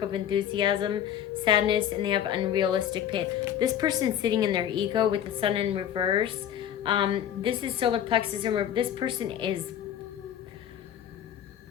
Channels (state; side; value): quieter; right; 10.3 dB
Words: of enthusiasm, sadness, and they have unrealistic pain. This person's sitting in their ego with the Sun in reverse. This is solar plexus in reverse. This person is